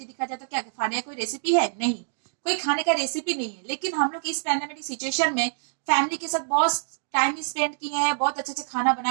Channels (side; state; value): left; silent; digital silence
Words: दिखाया जा रहा है, तो क्या खाने का कोई रेसिपी है? नहीं, कोई खाने का रेसिपी नहीं है। लेकिन हम लोग इस पैंडेमिक सिचुएशन में फैमिली के साथ बहुत टाइम स्पेंड किए हैं, बहुत अच्छे अच्छे खाना